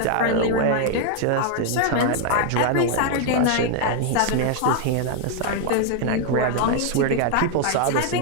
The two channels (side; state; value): both; different; correlation 0.00